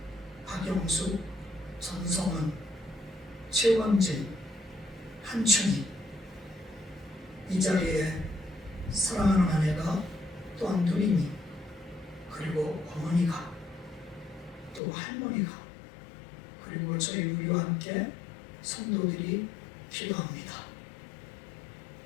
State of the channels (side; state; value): right; drops out; at 14.8 s